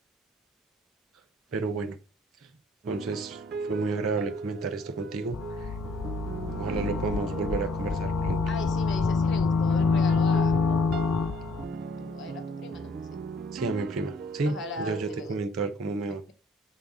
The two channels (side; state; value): both; normal; correlation 0.60